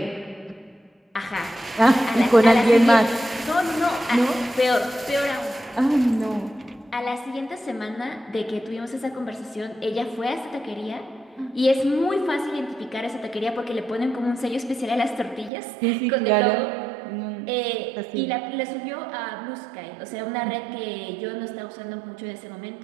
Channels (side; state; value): left; drops out; at 15.5 s